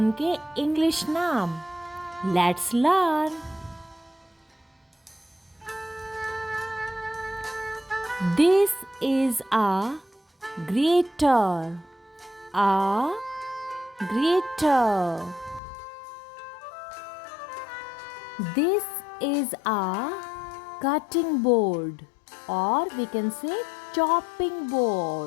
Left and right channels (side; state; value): right; drops out; at 15.6 s